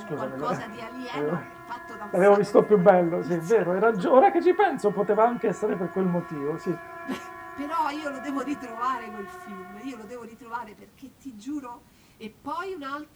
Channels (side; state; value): both; identical; correlation 1.00